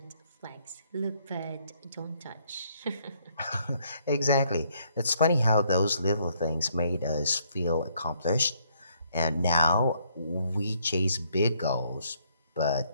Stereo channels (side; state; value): both; inverted; correlation -0.69